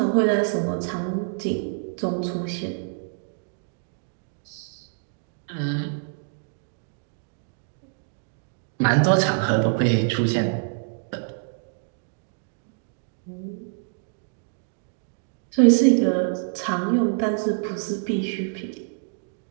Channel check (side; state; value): left; silent; digital silence